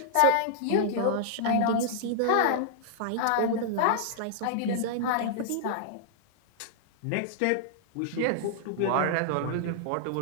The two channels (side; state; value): both; different; correlation -0.01